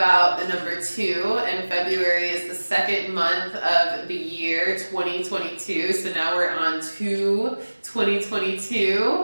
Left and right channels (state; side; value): inverted; both; correlation -1.00